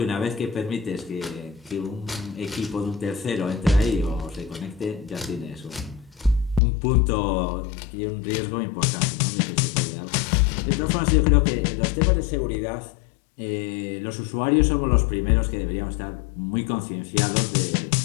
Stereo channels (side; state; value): right; drops out; at 6.6 s